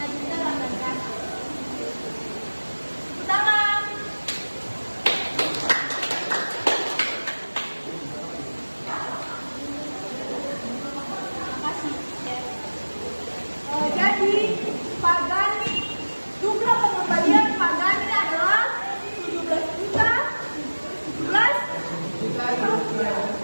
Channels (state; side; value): inverted; both; correlation -1.00